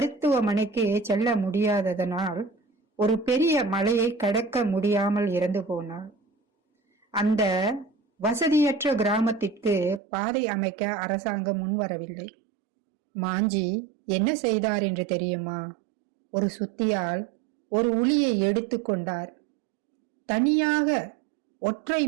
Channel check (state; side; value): drops out; left; at 10.0 s